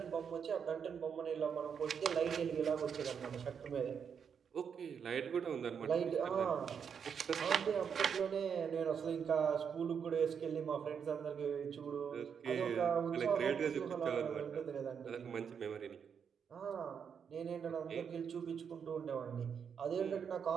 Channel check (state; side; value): quieter; left; 7.1 dB